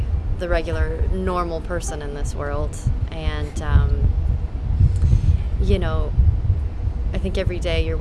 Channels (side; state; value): both; identical; correlation 1.00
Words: the regular, normal person in this world. And, I think every day you're